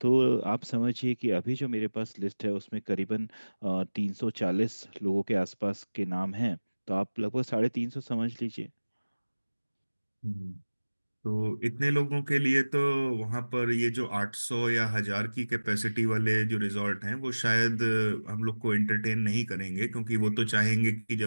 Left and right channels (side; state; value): both; inverted; correlation -1.00